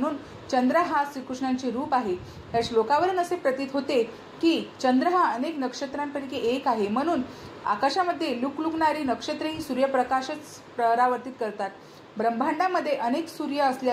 चंद्र हा श्रीकृष्णांचे रूप आहे. या श्लोकावरून असे प्रतीत होते की चंद्र हा अनेक नक्षत्रांपैकी एक आहे, म्हणून आकाशामध्ये लुकलुकणारी नक्षत्रेही सूर्यप्रकाशच परावर्तित करतात. ब्रह्मांडामध्ये अनेक सूर्य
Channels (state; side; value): identical; both; correlation 1.00